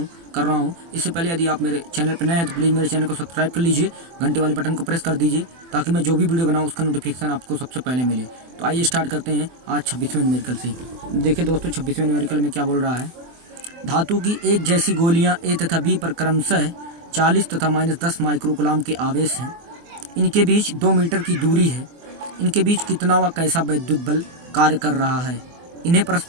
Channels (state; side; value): late; left; 24 ms